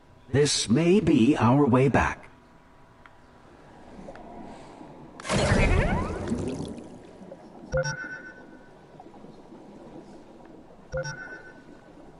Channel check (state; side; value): identical; both; correlation 1.00